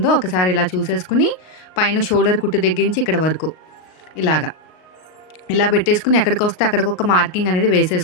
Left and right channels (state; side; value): late; right; 38 ms